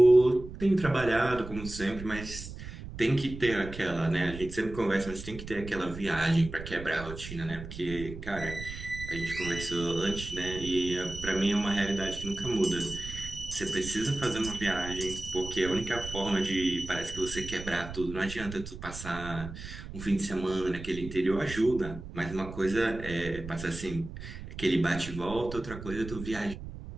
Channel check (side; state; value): right; noise; rumble, 11 dB below the sound